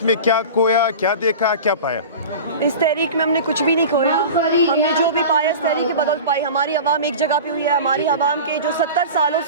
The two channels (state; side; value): inverted; both; correlation -0.33